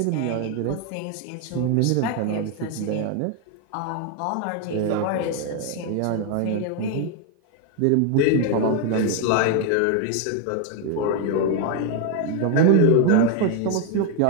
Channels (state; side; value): different; both; correlation 0.01